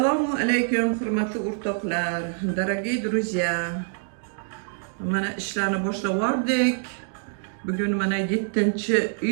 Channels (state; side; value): silent; left; digital silence